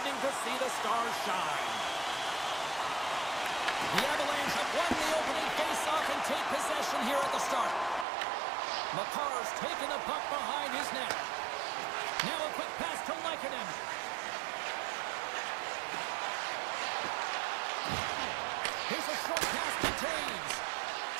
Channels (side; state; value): left; drops out; at 8.1 s